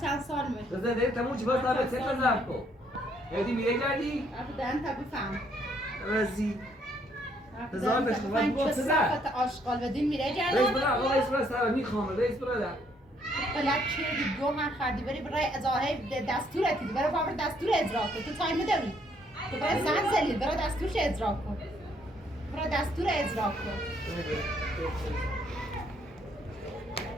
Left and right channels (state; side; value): normal; both; correlation 0.68